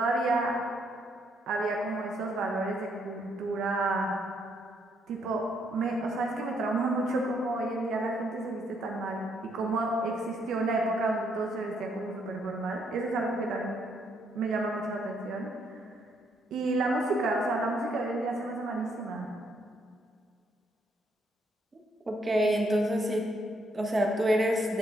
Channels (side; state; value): both; normal; correlation 0.73